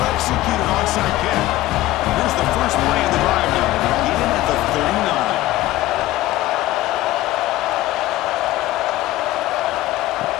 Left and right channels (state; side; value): quieter; right; 16.4 dB